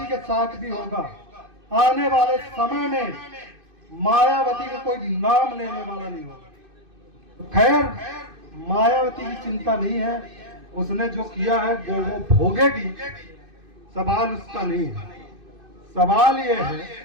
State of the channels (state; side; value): late; left; 2.5 ms